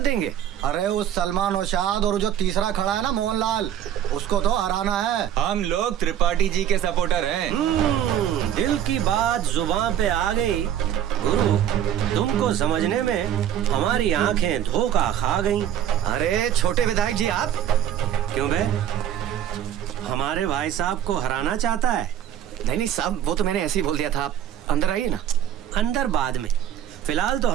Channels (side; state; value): left; quieter; 10.5 dB